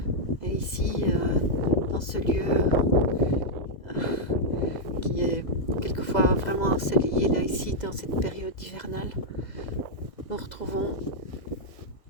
Et ici, dans ce lieu qui est quelquefois vraiment ensoleillé, là ici, dans cette période hivernale, nous retrouvons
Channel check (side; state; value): right; late; 2.0 ms